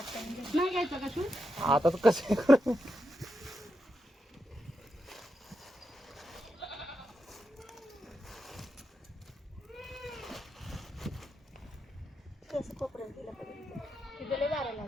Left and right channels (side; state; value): both; normal; correlation 0.86